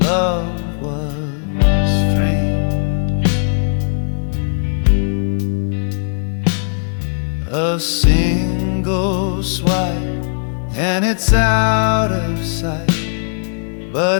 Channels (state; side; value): silent; right; digital silence